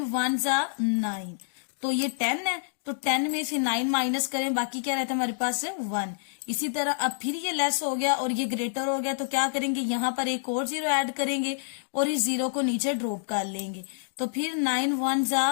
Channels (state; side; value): silent; right; digital silence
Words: 1 9, तो ये 10 है, तो 10 में से 9 माइनस करें, बाकी क्या रहता है हमारे पास 1। इसी तरह अब फिर ये लेस हो गया और ये ग्रेटर हो गया, तो क्या करेंगे, यहाँ पर एक और 0 ऐड करेंगे और इस 0 को नीचे ड्रॉप कर लेंगे। तो फिर 9 1